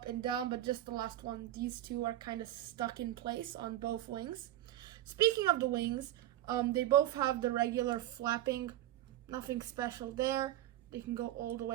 and down, but just the last one, these two are kind of stuck in place on both wings. Speaking of the wings, they both have the regular flapping, nothing special there. They can go all the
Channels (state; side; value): quieter; left; 13.6 dB